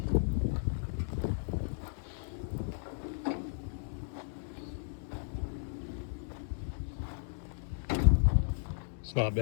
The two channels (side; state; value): right; silent; digital silence